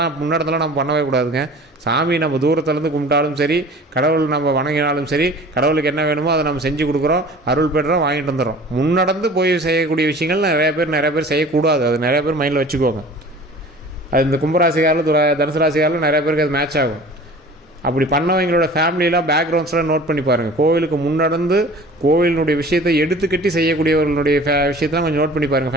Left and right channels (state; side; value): normal; both; correlation 0.44